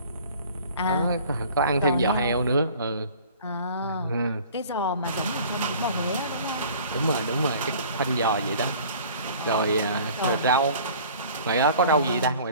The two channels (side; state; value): both; inverted; correlation -0.48